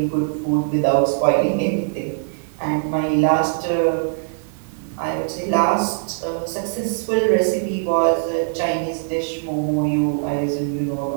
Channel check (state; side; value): silent; left; 64 dB below the other